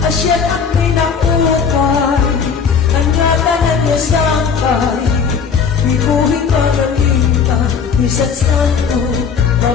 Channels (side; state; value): right; quieter; 6.2 dB